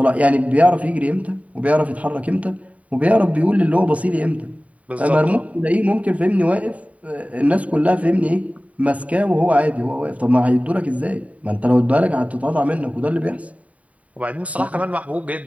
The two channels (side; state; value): left; late; 0.068 ms